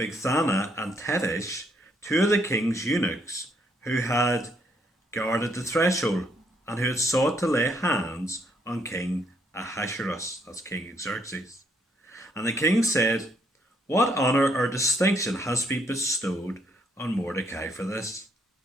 and Teresh, two of the king's eunuchs, who had guarded the threshold, and who had sought to lay hands on King Ahasuerus, that's King Xerxes. And the king said, "What honour or distinction has been bestowed on Mordecai for this?"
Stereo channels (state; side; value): normal; both; correlation 0.71